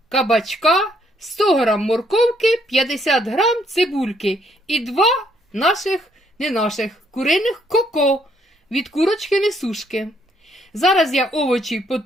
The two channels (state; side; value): normal; both; correlation 0.70